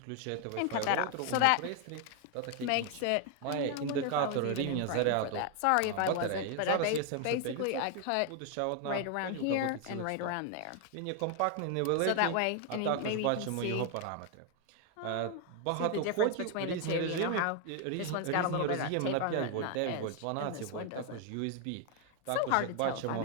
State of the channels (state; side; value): different; both; correlation 0.00